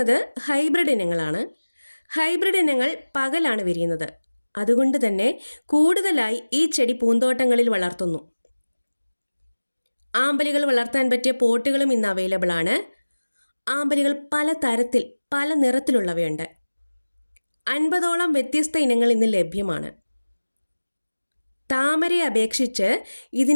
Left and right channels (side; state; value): both; inverted; correlation -1.00